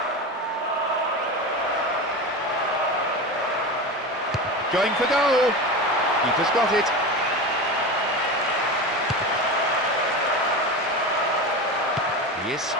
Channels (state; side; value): normal; both; correlation 0.25